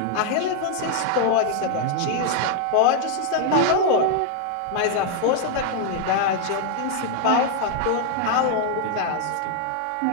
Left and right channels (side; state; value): both; different; correlation 0.00